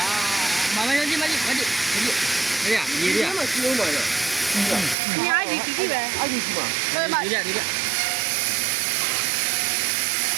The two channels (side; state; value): left; drops out; at 5.0 s